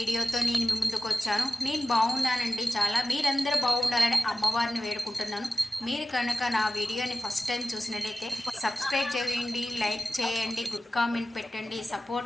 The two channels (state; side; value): normal; both; correlation 0.95